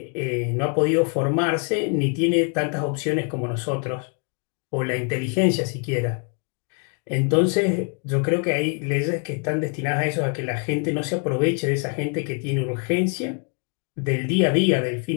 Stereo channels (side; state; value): right; quieter; 39.3 dB